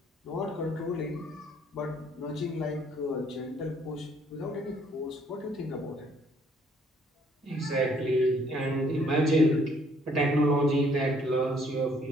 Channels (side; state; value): both; normal; correlation 0.64